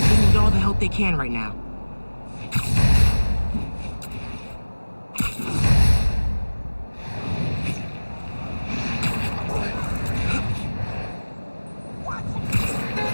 need all the help they can right now.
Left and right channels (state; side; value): inverted; both; correlation -1.00